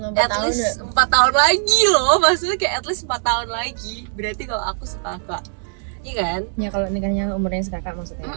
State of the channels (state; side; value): silent; left; 65 dB below the other